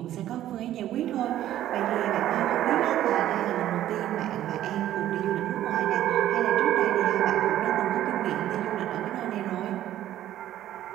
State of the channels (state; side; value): quieter; left; 12.7 dB